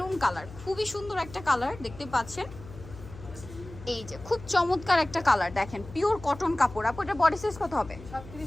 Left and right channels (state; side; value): noise; left; hum, 16 dB below the sound